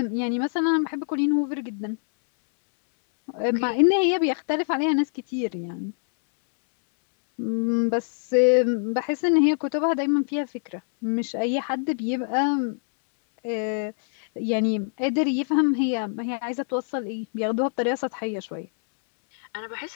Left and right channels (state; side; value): silent; right; 62 dB below the other